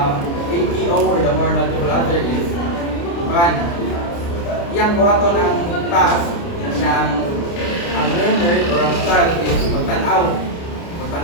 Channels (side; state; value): right; late; 29 ms